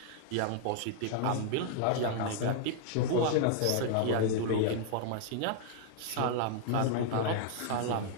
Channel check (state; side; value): different; both; correlation 0.00